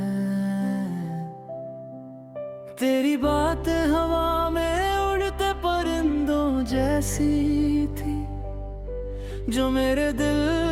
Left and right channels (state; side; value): identical; both; correlation 1.00